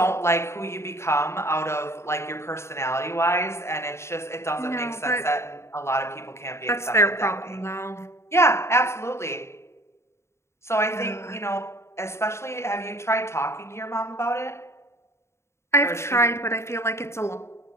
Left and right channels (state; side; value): late; right; 0.13 ms